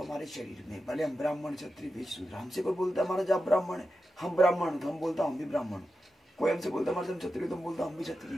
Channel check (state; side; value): normal; both; correlation 0.90